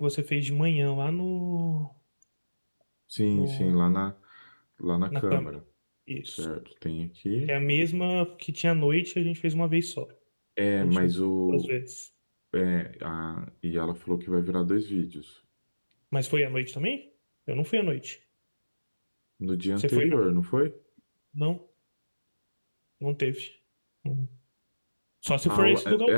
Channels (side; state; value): both; inverted; correlation -1.00